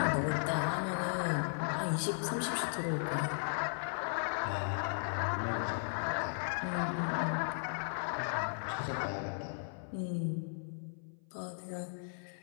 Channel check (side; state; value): right; silent; 54 dB below the other